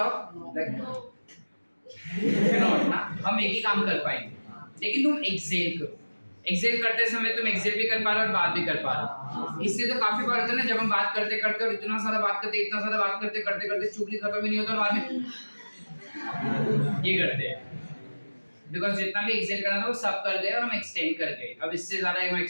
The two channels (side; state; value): both; inverted; correlation -1.00